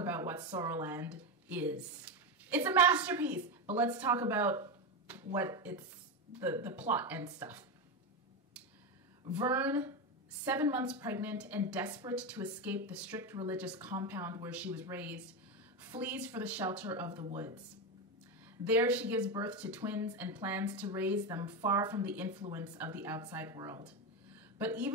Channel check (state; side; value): normal; both; correlation 0.14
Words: what SOULar is. It's a masterpiece, but let's talk about what it's, the plot and stuff. Vern, 7 months pregnant and desperate to escape the strict religious compound where she was raised, flees for the shelter of the woods. There she gives birth to twins and plans to raise them far from the influence of the outside world. But